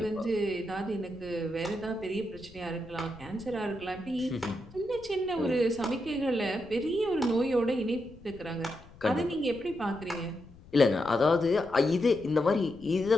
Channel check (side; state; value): left; noise; rumble, 21 dB below the sound